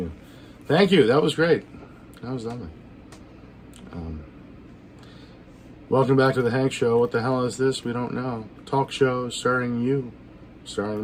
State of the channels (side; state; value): both; identical; correlation 1.00